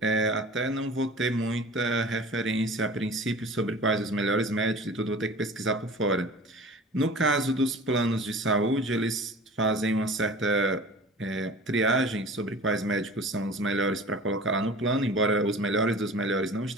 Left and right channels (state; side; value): normal; both; correlation 0.40